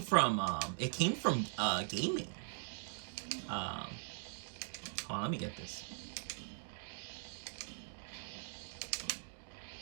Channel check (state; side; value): silent; left; digital silence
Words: it came from gaming. Um, Hold on, let me get this.